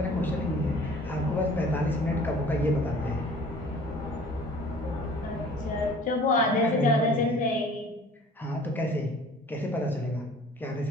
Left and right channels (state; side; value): normal; both; correlation 0.49